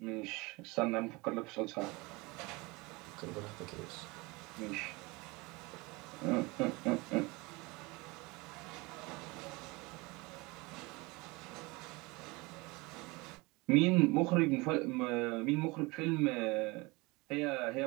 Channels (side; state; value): left; quieter; 24.7 dB